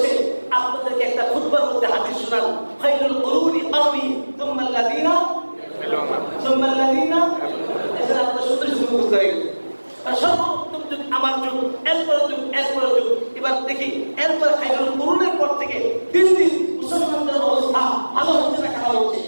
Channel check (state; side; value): inverted; both; correlation -1.00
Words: আপনাদেরকে একটা খুতবার মধ্যে হাদিস শোনান, খায়রুল কুরুনি কারনি সুম্মা আল্লাযিনা এটা আপনাদের শুনতে শুরু করতে হবে। সর্বোত্তম যুগ আমার যুগ, এরপর যুগ, এরপর যুগ। এবার দেখি এরপর খায়রুল কুরুনের পর থেকে দিন দিন মুসলমানদের অবস্থা ভালো হচ্ছে না খারাপ হচ্ছে?